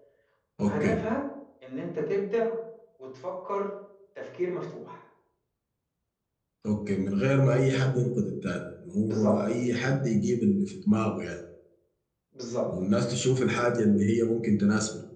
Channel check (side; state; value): both; identical; correlation 1.00